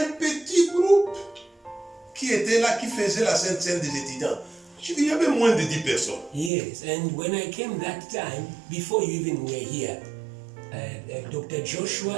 petit groupe qui était là, qui faisait la Sainte Seine des étudiants. Je dis, il y avait moins de 10 personnes. Yes, and when I came that time, before you even were here, Dr.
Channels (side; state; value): left; drops out; at 6.5 s